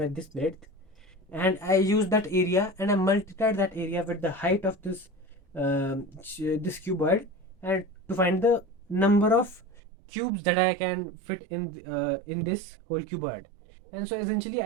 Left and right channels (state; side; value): drops out; left; at 9.6 s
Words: this breadth, and I used that area and I multiplied that area with the height of this this cuboid, and to find the number of cubes that I can fit in this whole cuboid. And so essentially,